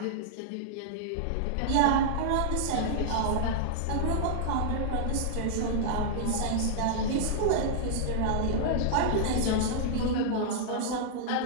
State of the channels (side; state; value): both; different; correlation -0.01